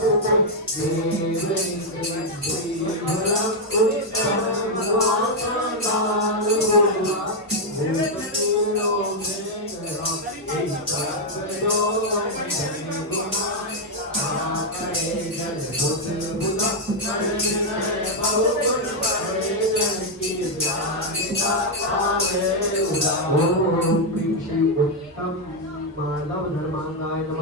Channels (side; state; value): both; normal; correlation 0.00